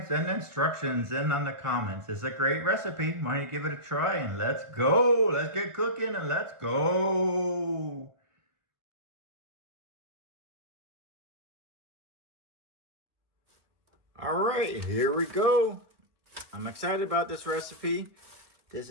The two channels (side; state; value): left; late; 1.4 ms